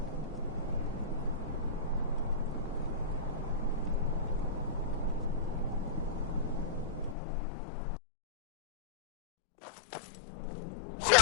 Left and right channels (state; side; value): drops out; right; at 7.2 s